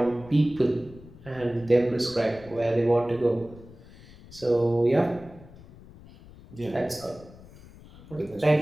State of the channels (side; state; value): left; noise; rumble, 20 dB below the sound